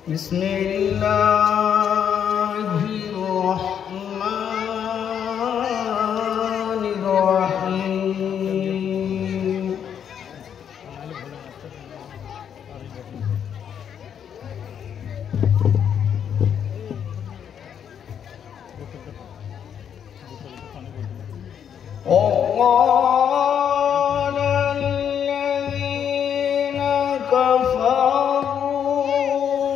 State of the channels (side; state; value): right; quieter; 8.5 dB